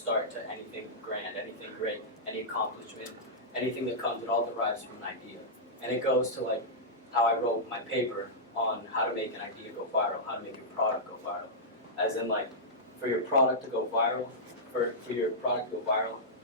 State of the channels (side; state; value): both; normal; correlation -0.12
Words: to anything grand, anything great, any accomplishment, anything that comes. It all derives from an idea, and it goes to like how I wrote my paper on how to make an idea go viral, how to make your product go viral. As in like, for your product to go viral, for your product to go viral,